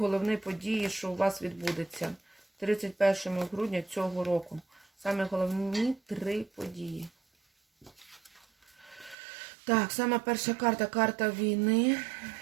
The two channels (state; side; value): drops out; left; at 9.2 s